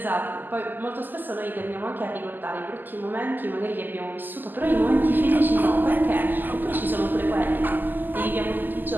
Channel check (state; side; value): late; left; 0.088 ms